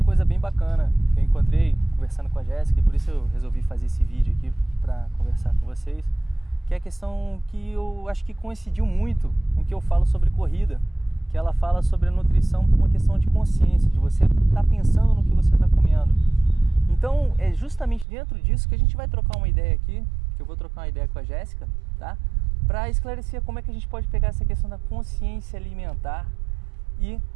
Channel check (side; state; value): left; drops out; at 18.1 s